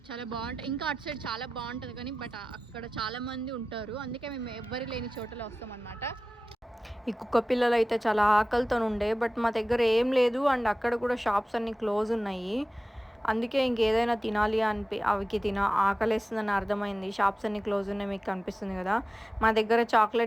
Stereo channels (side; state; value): both; normal; correlation 0.95